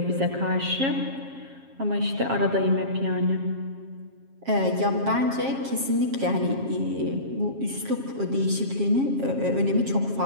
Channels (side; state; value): left; late; 7.4 ms